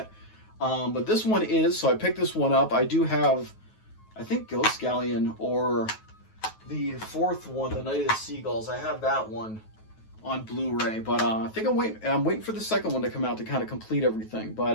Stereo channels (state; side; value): late; right; 9.3 ms